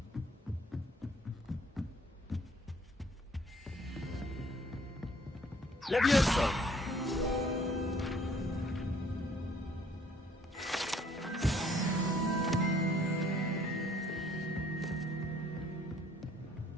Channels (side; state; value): both; normal; correlation 0.60